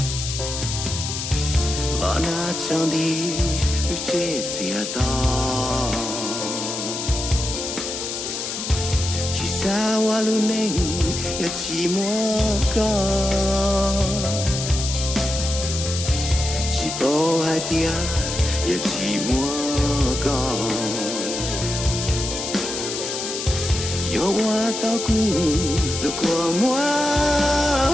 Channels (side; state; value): left; noise; hiss, 5 dB below the sound